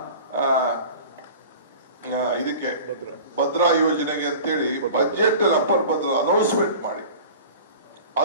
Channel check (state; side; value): inverted; both; correlation -0.39